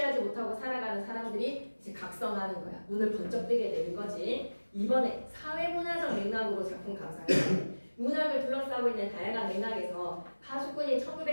못하고 살아가는 사람들이 이제 각성하는 거야. 눈을 번쩍 뜨게 되는 거지. 이번에 사회문화적 맥락으로 작품 감상해. 문학을 둘러싸고 있는 다양한 맥락에서 파수꾼이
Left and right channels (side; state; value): both; inverted; correlation -1.00